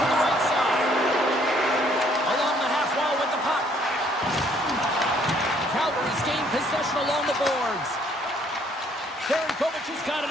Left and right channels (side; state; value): both; normal; correlation 0.64